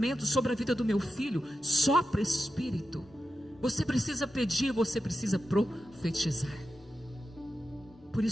sobre a vida do meu filho, sopra Espírito. Você precisa pedir, você precisa profetizar. Por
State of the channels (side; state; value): both; normal; correlation 0.90